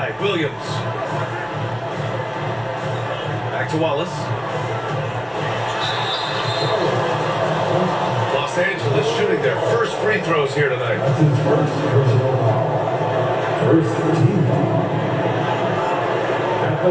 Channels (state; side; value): identical; both; correlation 1.00